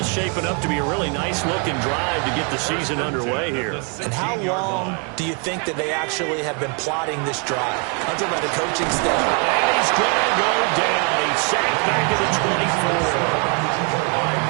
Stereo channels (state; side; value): quieter; left; 37.3 dB